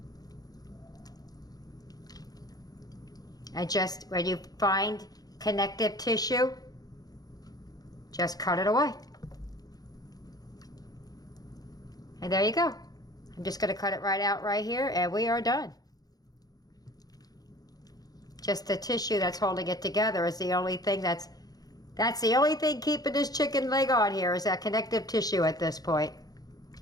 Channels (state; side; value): late; right; 0.19 ms